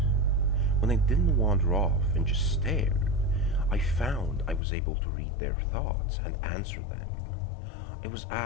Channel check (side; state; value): right; drops out; at 4.6 s